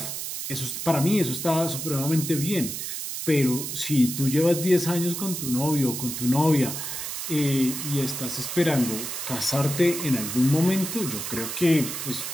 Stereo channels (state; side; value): noise; right; hiss, 5 dB below the sound